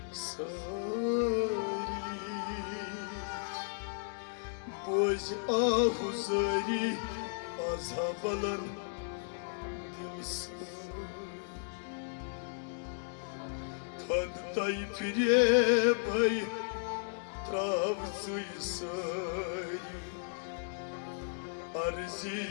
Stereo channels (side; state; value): right; silent; digital silence